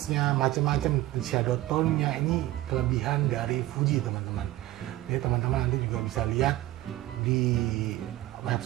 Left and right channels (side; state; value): left; quieter; 15.8 dB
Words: macam-macam, di shadow tone-nya. Ini kelebihan dari Fuji teman-teman. Jadi teman-teman nanti juga bisa lihat di